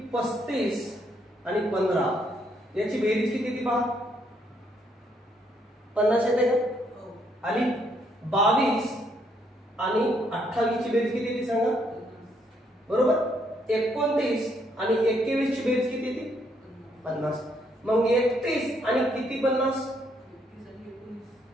35 आणि 15 याची बेरीज किती येते पहा. 50 येते का? आणि 22 आणि 28 ची बेरीज किती येते सांगा. बरोबर. 29 आणि 21 ची बेरीज किती येते? 50. मग 31 आणि किती 50?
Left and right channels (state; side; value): normal; both; correlation 0.72